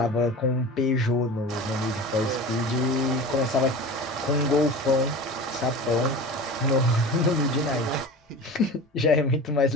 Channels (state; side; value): normal; both; correlation 0.34